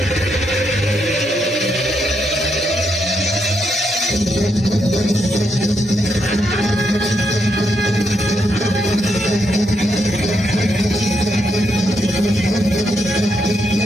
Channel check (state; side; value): normal; both; correlation 0.79